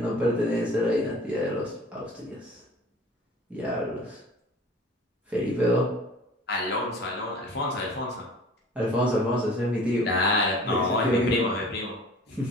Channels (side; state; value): both; normal; correlation 0.45